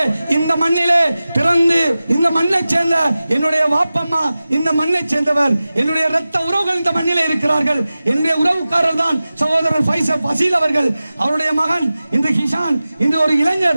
இந்த மண்ணிலே பிறந்து இந்த மண்ணை சேர்ந்த என்னுடைய வாப்பம்மா இந்த மண்ணை சேர்ந்தவர், என்னுடைய இரத்த உறவுகள் இந்த மண்ணிலே இருக்கிறார்கள். என்னுடைய உறவுக்காரர் தான் சகோதரர் ஃபசீல் அவர்கள். அவருடைய மகன் இன்று ஹிஷான், இன்று ஒரு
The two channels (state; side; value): inverted; both; correlation -0.96